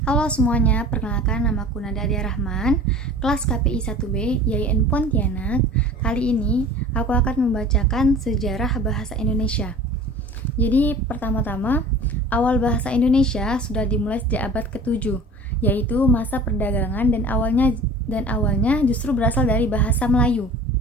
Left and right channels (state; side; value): normal; both; correlation 0.43